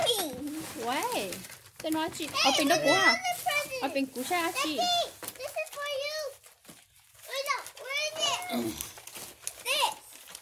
喂. Tôi nói chị. Ở bên đó cũ hả? Another present. Ở bên cũ xa chị. Becky, this is for you. Wait, no, where is it? This.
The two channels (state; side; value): identical; both; correlation 1.00